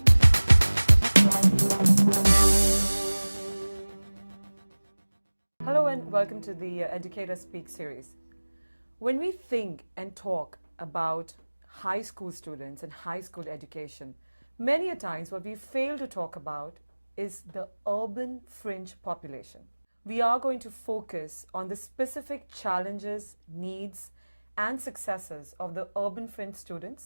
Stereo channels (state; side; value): inverted; both; correlation -1.00